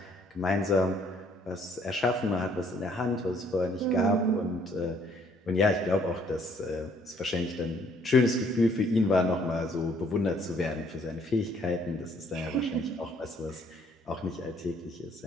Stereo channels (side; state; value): both; normal; correlation 0.63